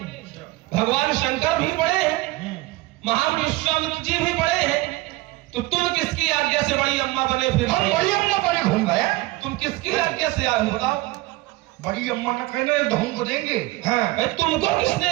भगवान शंकर भी बड़े हैं, महान विश्वामित्र जी भी बड़े हैं, तो तुम किसकी आज्ञा से बड़ी अम्मा बने? फिर हम बड़ी अम्मा बने घूम गए। तुम किसकी आज्ञा से आए हो बताओ? बड़ी अम्मा ने कहना धूम को देंगे। हाँ, तुमको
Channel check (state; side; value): quieter; left; 20.0 dB